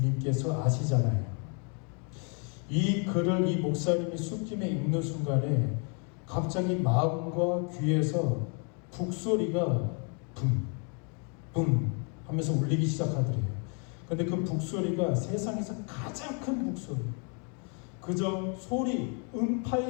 아시잖아요. 이 글을 이 목사님이 술김에 읽는 순간에 갑자기 마음과 귀에서 북소리가 붐 하면서 울리기 시작하더래요. 근데 그 북소리가 세상에서 가장 큰 북소리, 그저 소리,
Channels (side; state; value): right; quieter; 38.3 dB